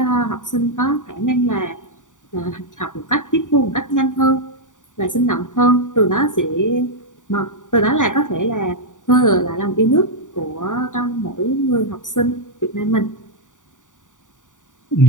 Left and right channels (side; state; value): right; late; 0.87 ms